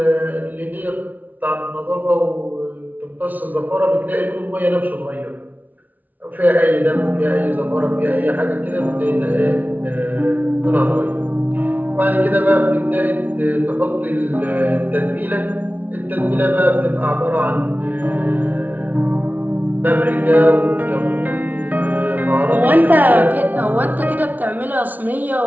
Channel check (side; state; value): left; late; 0.079 ms